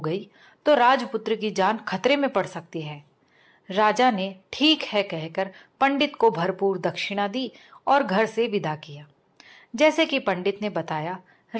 गई तो राजपुत्र की जान खतरे में पड़ सकती है। राजा ने ठीक है कहकर पंडित को भरपूर दक्षिणा दी और घर से विदा किया। जैसे कि पंडित ने बताया,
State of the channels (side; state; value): both; identical; correlation 1.00